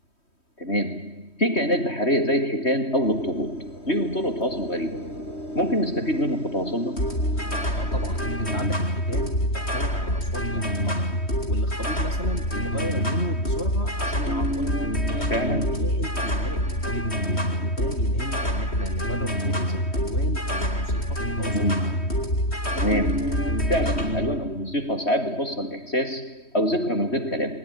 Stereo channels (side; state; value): right; late; 3.1 ms